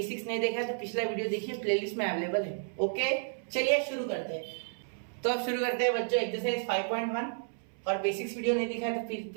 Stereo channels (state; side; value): silent; left; 57 dB below the other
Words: नहीं देखा है तो पिछला वीडियो देखिए, प्लेलिस्ट में अवेलेबल है। ओके चलिए शुरू करते हैं। तो अब शुरू करते हैं बच्चों एक्सरसाइज 5.1। और बेसिक्स वीडियो नहीं दिखा है तो